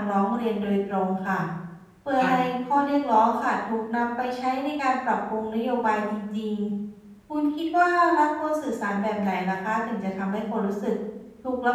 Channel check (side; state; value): both; identical; correlation 1.00